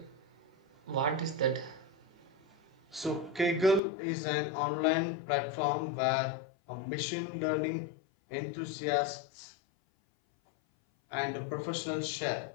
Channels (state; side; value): drops out; right; at 3.8 s